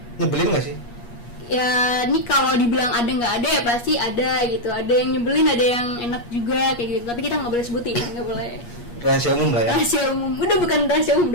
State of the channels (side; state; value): right; late; 8.4 ms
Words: nyebelin gak sih? Ya ini kalau dibilang ada nggak ada ya pasti ada gitu. Ada yang nyebelin, ada yang enak juga kayak gitu. Tapi kita nggak boleh sebutin, nggak boleh. Rahasia umum lah ya. Rahasia umum, udah bukan rahasia umum